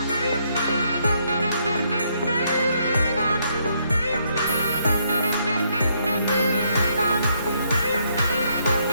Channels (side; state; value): both; inverted; correlation -0.73